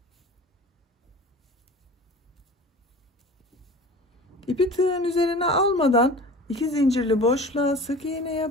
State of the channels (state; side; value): normal; both; correlation 0.39